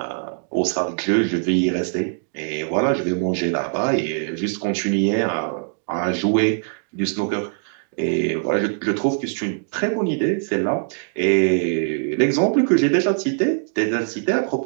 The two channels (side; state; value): left; silent; digital silence